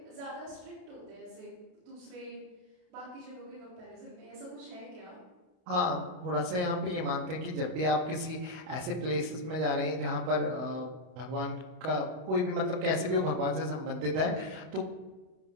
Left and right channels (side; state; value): left; late; 32 ms